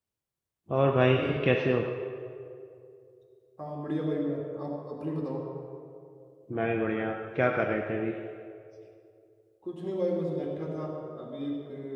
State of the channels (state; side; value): identical; both; correlation 1.00